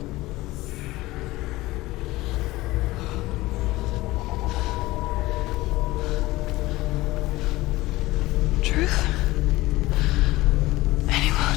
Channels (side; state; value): right; quieter; 18.9 dB